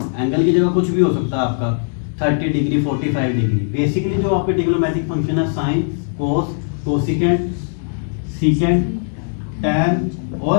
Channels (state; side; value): silent; right; digital silence